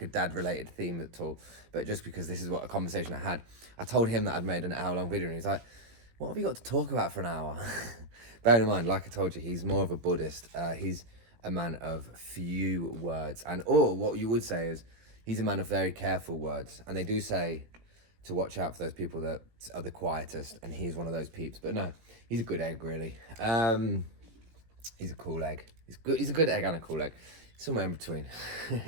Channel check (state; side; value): late; left; 18 ms